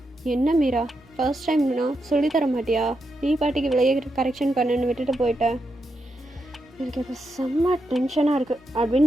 என்ன மீரா ஃபர்ஸ்ட் டைம்னா சொல்லித்தர மாட்டியா, நீ பாட்டிக்கு விளைய கரெக்ஷன் பண்ணுன்னு விட்டுட்டு போயிட்டேன், எனக்கு இப்போ செம்ம டென்ஷனாக இருக்குது அப்படின்னு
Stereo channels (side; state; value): both; normal; correlation 0.84